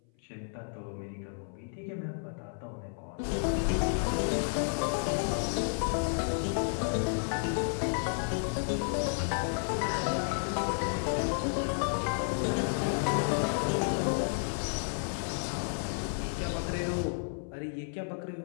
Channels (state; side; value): silent; right; 56 dB below the other